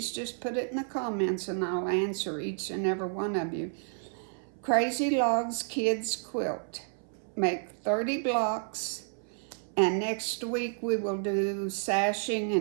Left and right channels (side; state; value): left; silent; 57 dB below the other